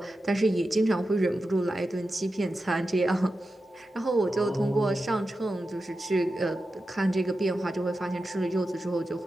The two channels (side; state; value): both; normal; correlation 0.91